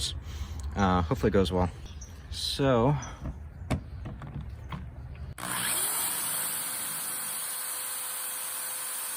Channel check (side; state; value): both; identical; correlation 1.00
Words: Hopefully it goes well. So,